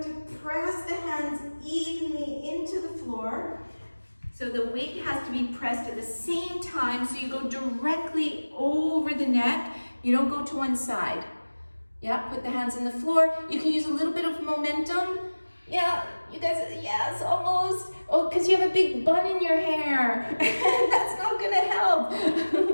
to press the hands evenly into the floor. So the weight has to be pressed at the same time, so you go directly over the neck. You don't go to one side. Yeah, put the hands in the floor. You can use a little bit of momentum. Yeah, you guys, yes, almost. Oh, because you have a big bun in your hair. That's not gonna help.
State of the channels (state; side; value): inverted; both; correlation -1.00